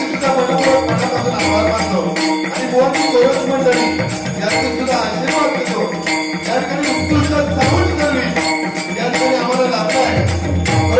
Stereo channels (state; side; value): identical; both; correlation 1.00